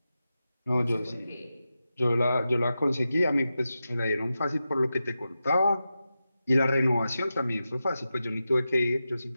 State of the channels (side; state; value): both; inverted; correlation -0.91